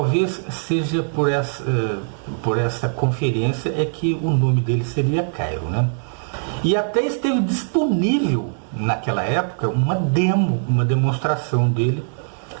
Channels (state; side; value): silent; left; digital silence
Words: seja por essa conferência é que o nome dele seria Cairo, né? E até esteve disponível naquela época uma demonstração dele